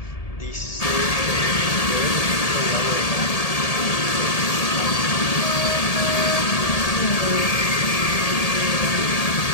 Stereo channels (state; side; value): late; right; 1.8 ms